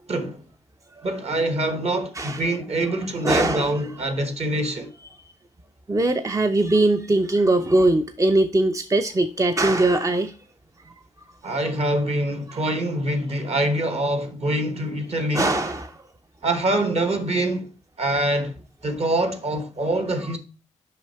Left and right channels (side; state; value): both; normal; correlation 0.69